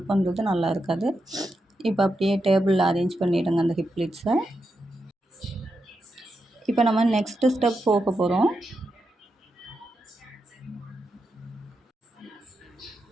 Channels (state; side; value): normal; both; correlation 0.86